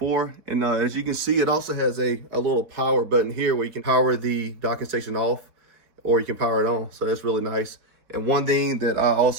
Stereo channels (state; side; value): late; left; 4.0 ms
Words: And as you can see, it also has a little power button here where you can power the docking station off or you can power it on. So that's really nice. And one thing that I